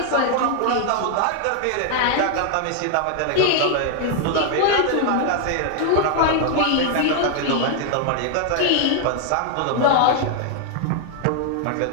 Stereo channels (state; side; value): different; both; correlation 0.00